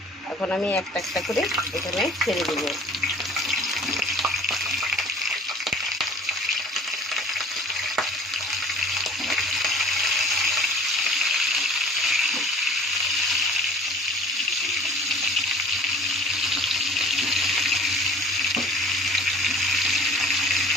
এখন আমি একটা একটা করে এখানে ছেড়ে দেবো।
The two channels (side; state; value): both; normal; correlation 0.49